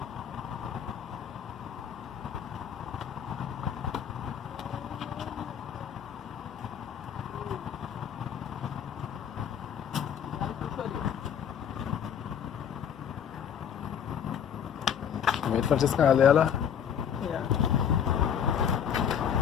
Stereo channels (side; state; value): right; quieter; 8.4 dB